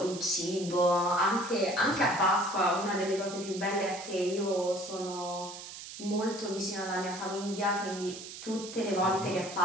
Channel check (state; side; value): noise; right; hiss, 12 dB below the sound